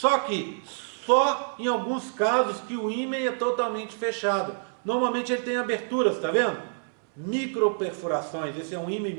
que só em alguns casos que o ímen é totalmente fechado. Normalmente ele tem aberturas, tá vendo? Microperfurações, esse é um ímen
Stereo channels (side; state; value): left; silent; 60 dB below the other